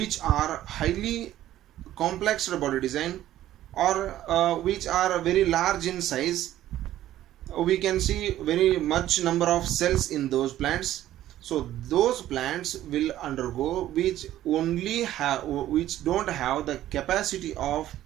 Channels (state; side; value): quieter; left; 13.3 dB